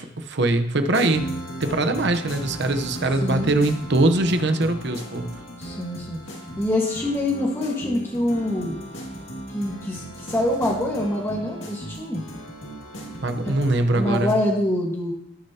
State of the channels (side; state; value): both; normal; correlation 0.64